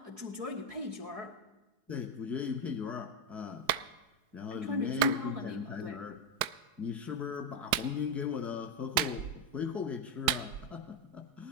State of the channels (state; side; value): late; left; 4.8 ms